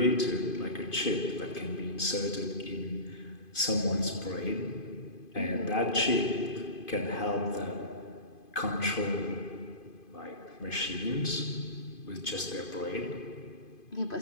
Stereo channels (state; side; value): late; right; 2.5 ms